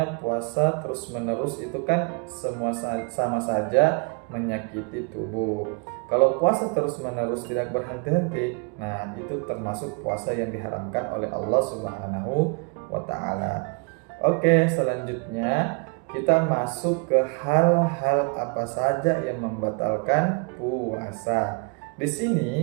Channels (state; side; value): quieter; left; 33.2 dB